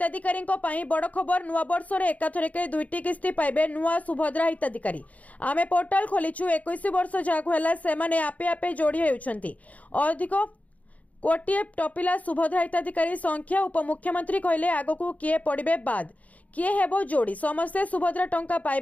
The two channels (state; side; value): late; right; 0.071 ms